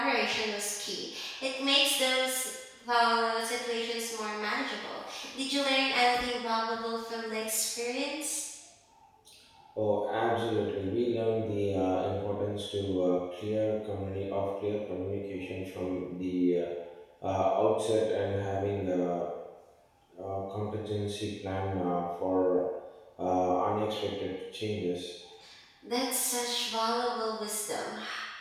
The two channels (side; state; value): both; identical; correlation 1.00